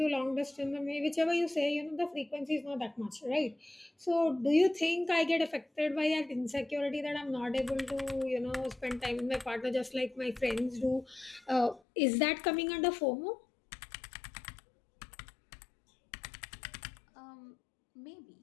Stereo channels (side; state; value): right; drops out; at 11.8 s